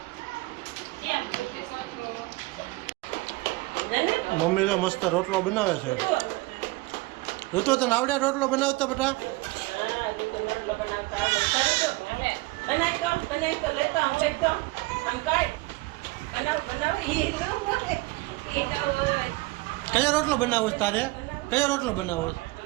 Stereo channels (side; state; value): left; quieter; 22.1 dB